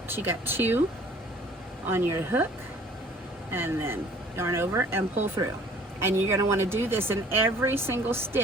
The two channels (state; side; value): normal; both; correlation 0.53